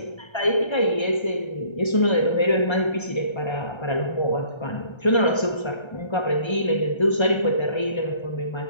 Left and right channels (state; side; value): late; right; 1.3 ms